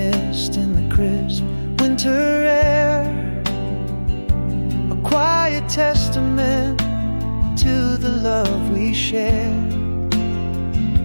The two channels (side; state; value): both; inverted; correlation -1.00